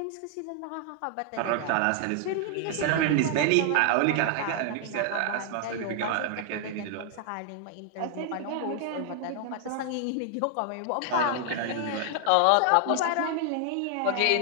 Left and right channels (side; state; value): both; different; correlation 0.00